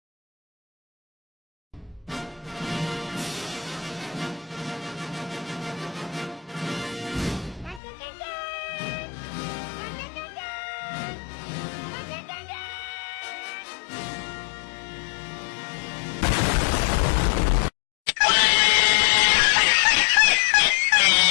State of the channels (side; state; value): right; drops out; at 7.8 s